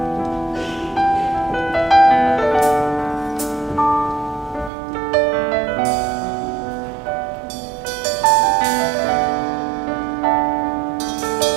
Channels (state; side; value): drops out; left; at 4.7 s